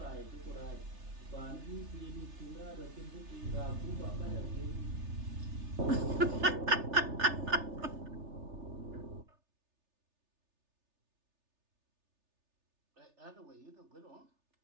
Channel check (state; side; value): late; left; 3.3 ms